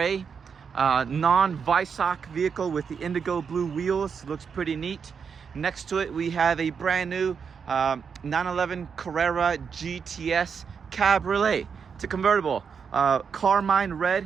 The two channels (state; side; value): quieter; left; 6.3 dB